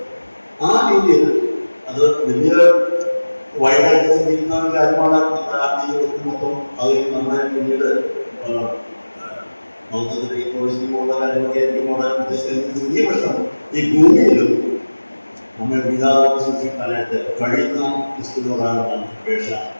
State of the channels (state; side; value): inverted; both; correlation -1.00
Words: ആ രീതിയിൽ അത് വലിയ വൈകാരിക ചിന്തിക്കുന്ന ഒരു കാര്യമാണ്. മൊത്തം അത് നമ്മളെ പിന്നീട് മൗത്തത്തിലുള്ള കാര്യങ്ങളൊക്കെ ആയിരിക്കും ഉദ്ദേശിക്കുന്നത്. ചെറിയ പ്രശ്നം ഈ ഭൂമിയിലും നമ്മൾ വിധാനം സൂക്ഷിക്കാനായിട്ട് കഴിയുന്ന ക്രിസ്തുവിനോടാണ് അപേക്ഷ